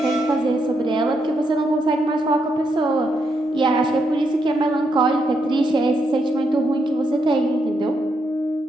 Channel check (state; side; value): normal; both; correlation 0.79